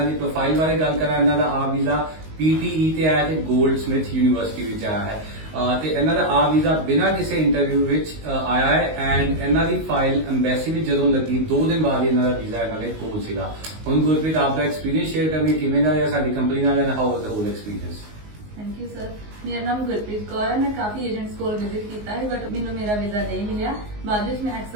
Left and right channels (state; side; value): late; left; 19 ms